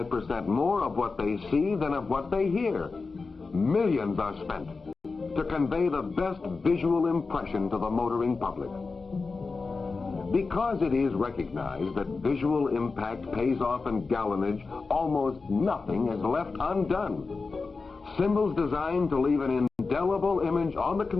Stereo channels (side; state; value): right; quieter; 4.2 dB